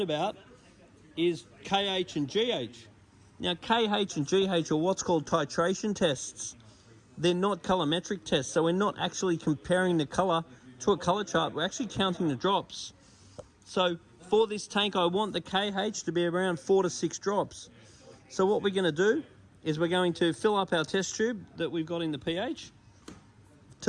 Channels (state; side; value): identical; both; correlation 1.00